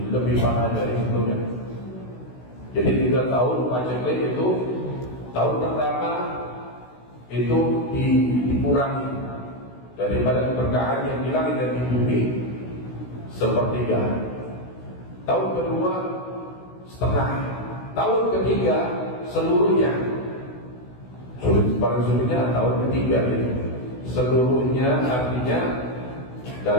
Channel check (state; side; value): late; right; 16 ms